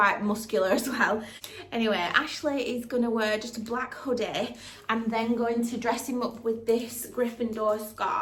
muscular as well. Anyway, Ashley is going to wear just a black hoodie. I'm then going to dress him up with this Gryffindor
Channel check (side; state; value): both; identical; correlation 1.00